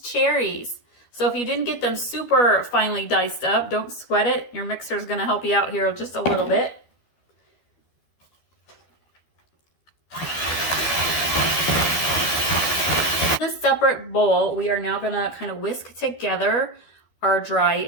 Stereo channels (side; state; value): right; late; 12 ms